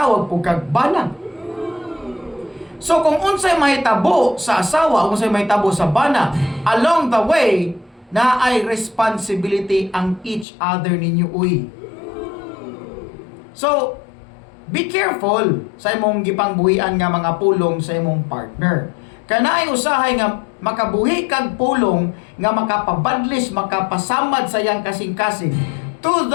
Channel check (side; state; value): right; drops out; at 10.5 s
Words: po kag bana. So kung unsay mahitabo sa asawa o unsay mahitabo sa bana, along the way, na ay responsibility ang each other ninyo uy. So, be careful sa imong gipangbuhian nga mga pulong sa imong partner. Kanaay usahay nga makabuhi kag pulong nga makapabadlis, makapasamad sa iyang kasing-kasing to